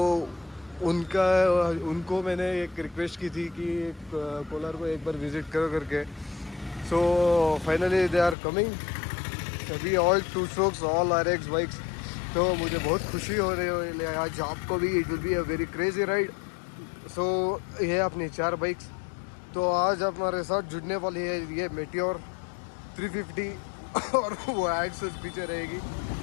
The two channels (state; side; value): drops out; right; at 8.3 s